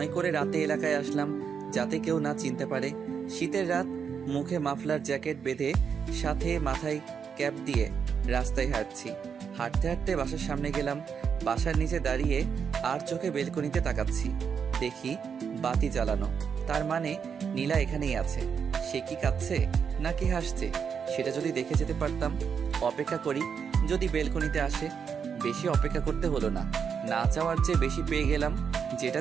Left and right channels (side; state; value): left; quieter; 6.8 dB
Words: করে রাতে এলাকায় আসলাম, যাতে কেউ না চিনতে পারে। শীতের রাত, মুখে মাফলার জ্যাকেট বেঁধে, সাথে মাথায় ক্যাপ দিয়ে রাস্তায় হাঁটছি। হাঁটতে হাঁটতে বাসার সামনে গেলাম। বাসার নিচে দাঁড়িয়ে আর চোখে বেলকনিতে তাকাচ্ছি। দেখি বাতি জ্বালানো, তার মানে নীলা এখানেই আছে। সে কি কাঁদছে নাকি হাসছে সেটা যদি দেখে যেতে পারতাম। অপেক্ষা করি, যদি বেলকনিতে আসে। বেশি অপেক্ষা করতে হলো না, না চাওয়ার চেয়ে বেশি পেয়ে গেলাম, যেটা